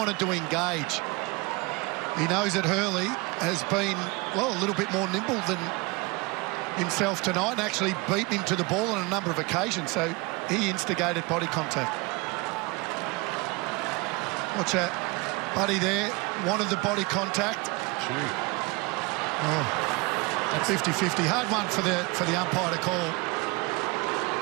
to engage. He knows that Hurley has been, well, a little bit more nimble than himself tonight and actually beaten him to the ball on a number of occasions, so he instigated body contact. Watch that. Buddy there wanted the body contact. Oh, that's 50-50. Hard one for the umpire to call.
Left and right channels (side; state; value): left; quieter; 26.4 dB